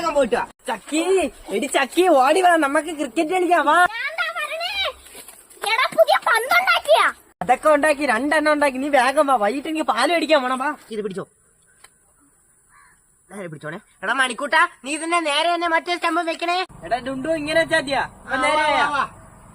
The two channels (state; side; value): identical; both; correlation 1.00